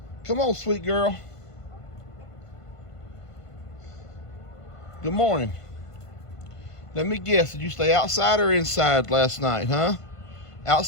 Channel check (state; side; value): late; right; 1.5 ms